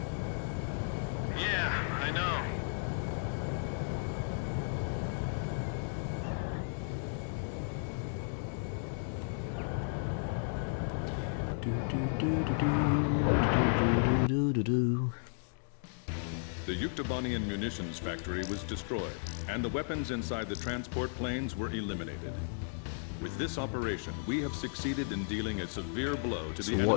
Yeah, I know. The Yuktobanian munitions factory was destroyed, and the weapons inside the transport planes were eliminated. With this operation, we have succeeded in dealing a severe blow to So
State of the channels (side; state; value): right; silent; digital silence